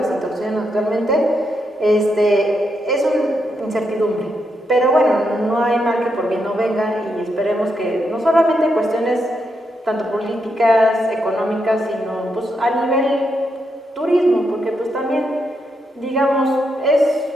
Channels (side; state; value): both; normal; correlation 0.81